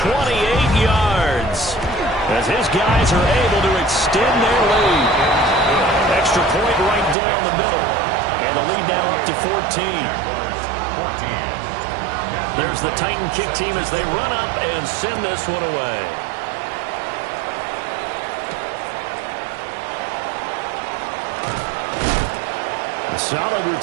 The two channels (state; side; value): drops out; left; at 7.2 s